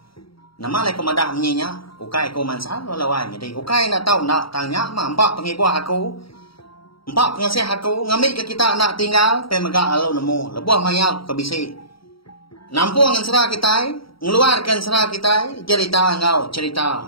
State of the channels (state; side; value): late; right; 0.75 ms